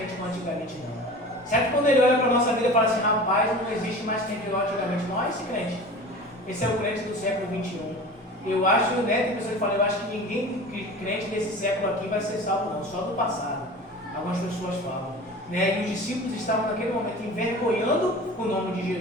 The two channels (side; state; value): both; normal; correlation 0.37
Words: como antigamente não? Será que quando ele olha para a nossa vida e fala assim: rapaz, não existe mais crente igual antigamente? Não é esse crente. Esse é o crente do século 21. Eu acho, né, tem pessoas que falam: eu acho que ninguém crente desse século aqui vai ser salvo não, só do passado. Algumas pessoas falam. né? E os discípulos estavam naquele momento envergonhando o nome de